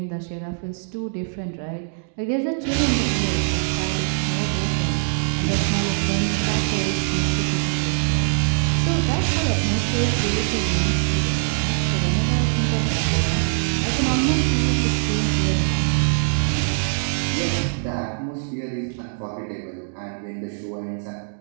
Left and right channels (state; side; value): silent; left; digital silence